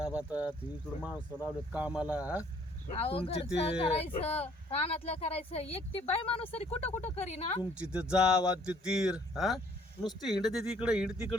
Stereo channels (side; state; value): both; normal; correlation 0.61